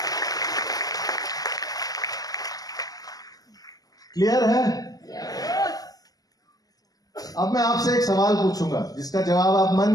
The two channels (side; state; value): right; late; 0.18 ms